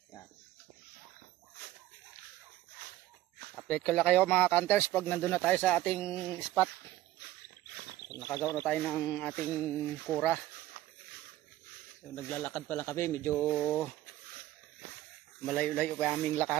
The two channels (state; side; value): quieter; left; 15.2 dB